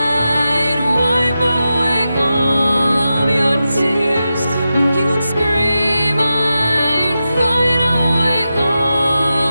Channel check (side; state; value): both; inverted; correlation -0.91